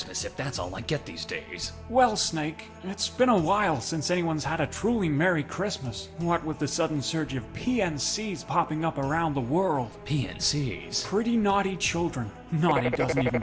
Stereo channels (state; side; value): identical; both; correlation 1.00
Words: if that's all I get these days? Well, Snake, it's been a while since anyone's had a truly Merry Christmas. What with the sudden surge of PNCs popping up around the world. PNCs? Pretty naughty children. Naughty doesn't